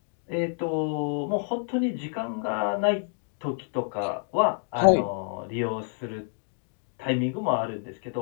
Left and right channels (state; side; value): silent; right; 59 dB below the other